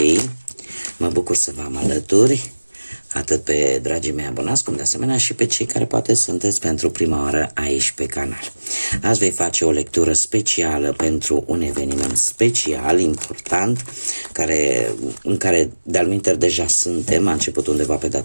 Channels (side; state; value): both; inverted; correlation -1.00